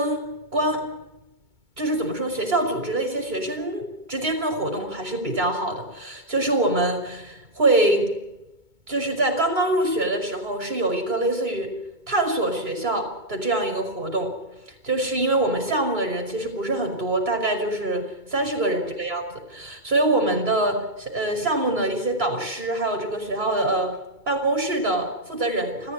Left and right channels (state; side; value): late; left; 2.2 ms